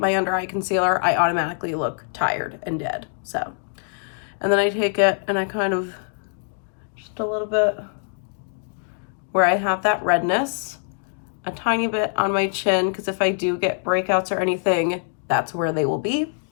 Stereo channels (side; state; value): right; silent; digital silence